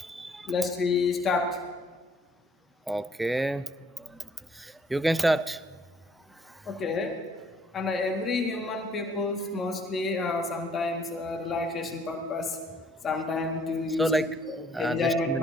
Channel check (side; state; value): both; normal; correlation 0.63